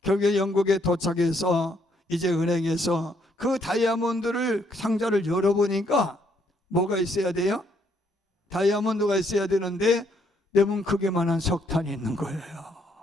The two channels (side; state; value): both; normal; correlation 0.71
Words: 결국에 영국에 도착해서 이제 은행에서 그 다이아몬드를 상자를 열어보니까 뭐가 있어야 돼요? 다이아몬드가 있어야 되는데 레몬 크기만한 석탄이 있는 거예요.